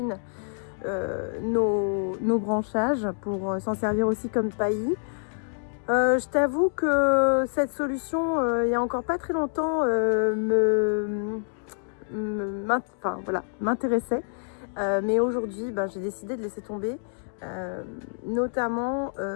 nos branchages pour s'en servir aussi comme paillis. Je t'avoue que cette solution, il y a encore pas très longtemps, m'intéressait. Mais aujourd'hui, j'ai décidé de laisser tomber, notamment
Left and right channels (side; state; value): right; silent; digital silence